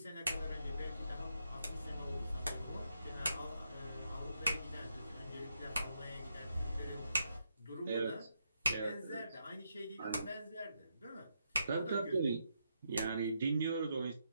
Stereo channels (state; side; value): inverted; both; correlation -0.80